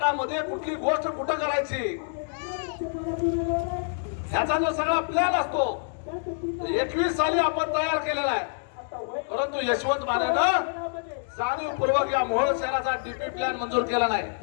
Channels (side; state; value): right; silent; digital silence